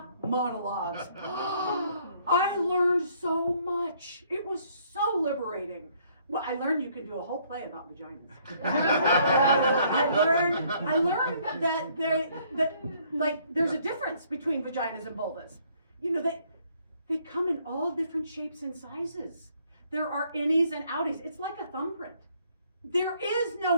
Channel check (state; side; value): inverted; both; correlation -0.65